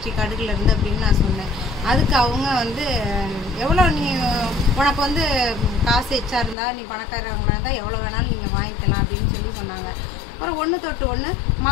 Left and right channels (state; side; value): drops out; right; at 6.6 s